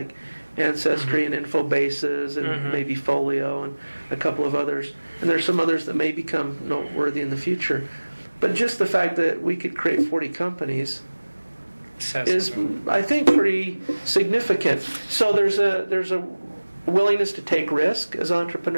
Ancestry and Infobases and maybe Folio and a couple of others. And there's some others that may become noteworthy in the future. But just the fact that we could create 40 companies is, I think, pretty significant. So there's a willingness to take risk as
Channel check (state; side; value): inverted; both; correlation -1.00